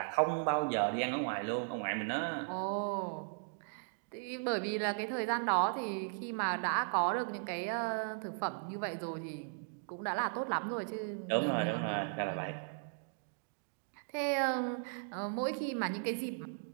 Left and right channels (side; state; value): left; silent; digital silence